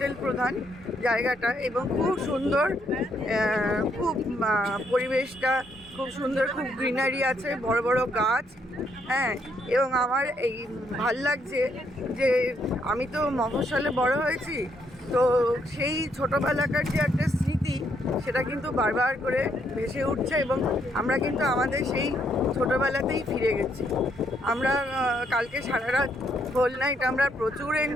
প্রধান জায়গাটা, এবং খুব সুন্দর, খুব পরিবেশটা খুব সুন্দর, খুব গ্রিনারি আছে, বড় বড় গাছ। হ্যাঁ, এবং আমার এই ভাল লাগছে যে আমি তো মফস্বলে বড় হয়েছি, তো সেই ছোটোবেলাকার যে একটা স্মৃতি সেটা কিন্তু বারবার করে ভেসে উঠছে, এবং আমরা কিন্তু আমাদের সেই ছোটোবেলাতেই ফিরে গেছি। আমরা কালকে সারা রাত হোল নাইট আমরা প্রচুর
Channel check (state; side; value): normal; both; correlation 0.74